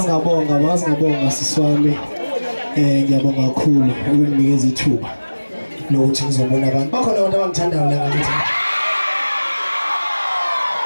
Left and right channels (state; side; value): inverted; both; correlation -1.00